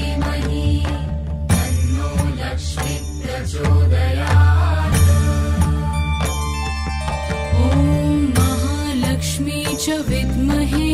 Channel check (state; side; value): identical; both; correlation 1.00